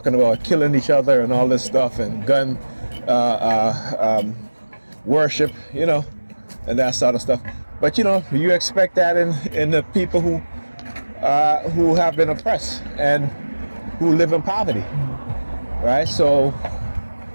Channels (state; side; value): inverted; both; correlation -1.00